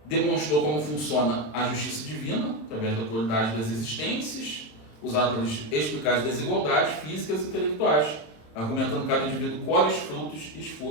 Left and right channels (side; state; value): right; late; 27 ms